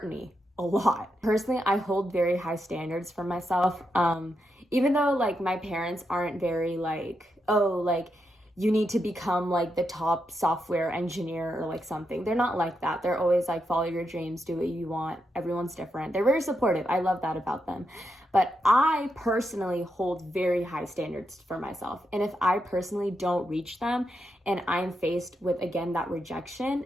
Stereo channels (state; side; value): normal; both; correlation 0.84